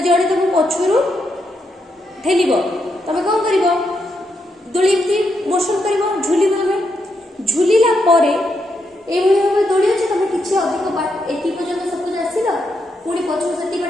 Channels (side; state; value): both; normal; correlation 0.81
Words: तुम पछरू ठेल तुम कौन कर दोली मोशन कर झुल झुलिला भाव दोली अच्छे तुम किसी अधिक एति पर्यंत सपोज आसिल पुणी पछू से